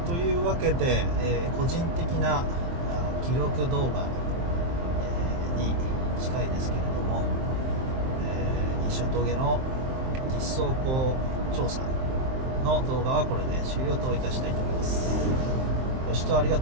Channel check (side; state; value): left; late; 23 ms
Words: というわけで、個人的な記録動画、に近いですけれども、西所峠の実走行調査の動画はこれで終了といたしたいと思います。ご視聴ありが